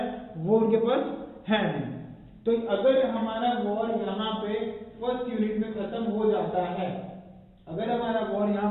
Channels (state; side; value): identical; both; correlation 1.00